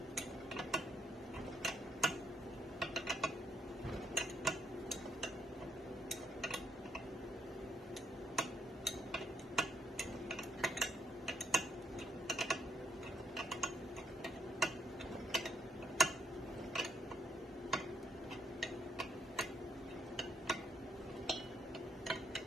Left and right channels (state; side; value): normal; both; correlation 0.72